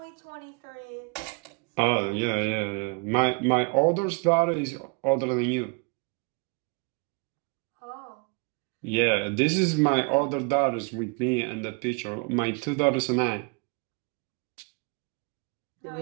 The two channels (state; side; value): quieter; left; 33.3 dB